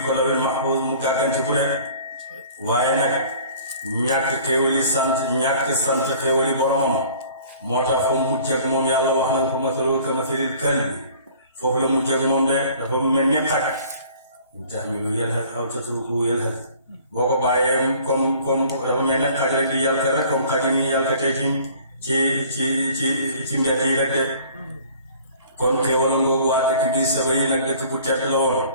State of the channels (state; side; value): inverted; both; correlation -0.51